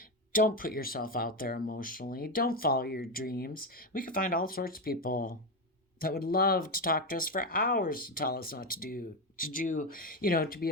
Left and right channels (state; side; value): normal; both; correlation 0.12